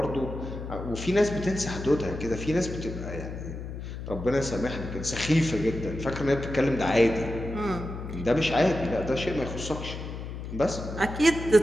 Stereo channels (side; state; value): left; noise; hum, 8 dB below the sound